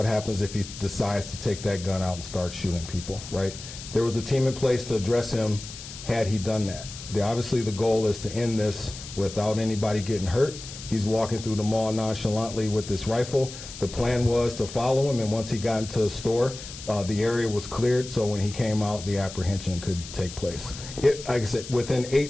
happens if he decides to take that gun out and start shooting people, right? There was a team in place to address him had he done that. Obviously the goal is to end this without anybody getting hurt. He's walking through the mall nonchalantly with this rifle. The plan was to follow him, and once he got into the store, the area was cleared, so when he came out, the apprehension could take place. Like I said, within 8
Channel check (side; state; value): left; noise; hiss, 12 dB below the sound